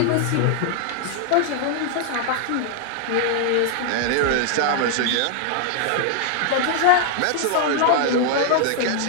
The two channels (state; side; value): different; both; correlation 0.00